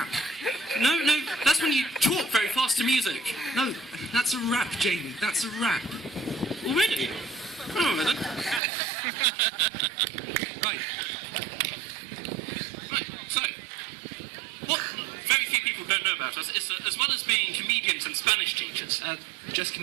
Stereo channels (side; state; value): left; drops out; at 8.6 s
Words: No, that's when you talk very fast to music. No, that's a rap, Jamie, that's a rap. Already? Oh, then. Right, so, what very few people don't know about us is that as well as being comedians and Spanish teachers, just